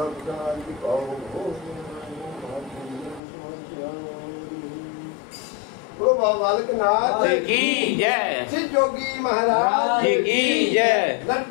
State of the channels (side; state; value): right; drops out; at 3.2 s